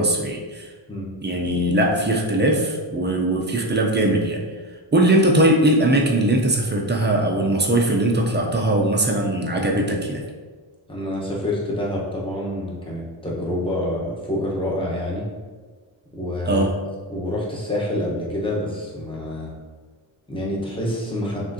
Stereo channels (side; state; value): both; normal; correlation 0.21